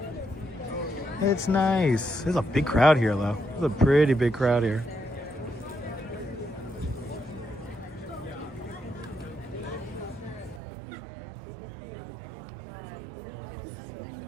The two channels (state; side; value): drops out; left; at 10.6 s